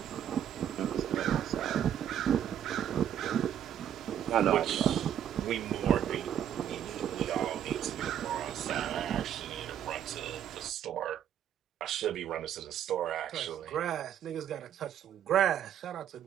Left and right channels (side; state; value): left; quieter; 10.0 dB